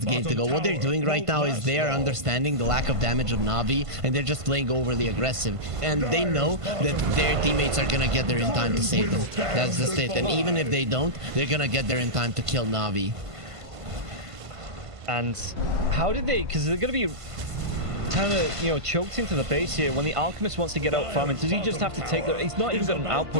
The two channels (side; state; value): left; late; 1.5 ms